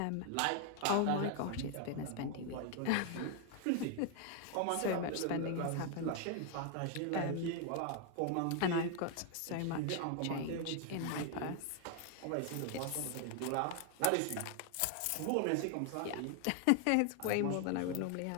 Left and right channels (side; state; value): both; different; correlation 0.00